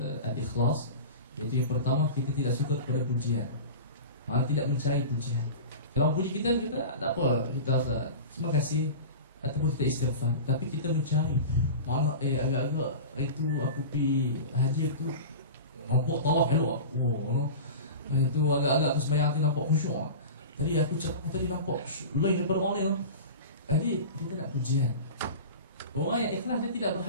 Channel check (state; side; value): inverted; both; correlation -0.32